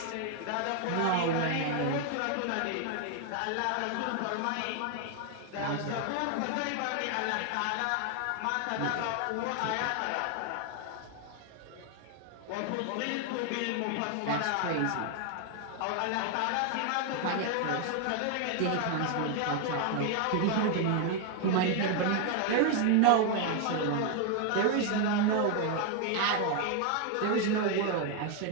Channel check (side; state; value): both; different; correlation 0.00